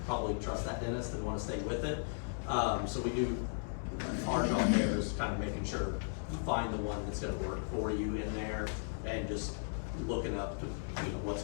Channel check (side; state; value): right; silent; digital silence